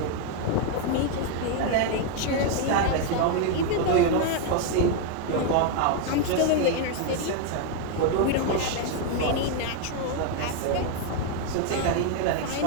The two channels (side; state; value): both; different; correlation 0.01